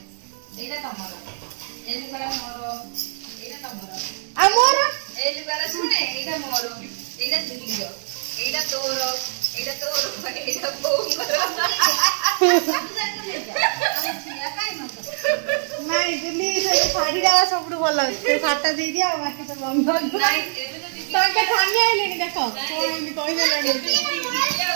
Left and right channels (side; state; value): left; silent; 56 dB below the other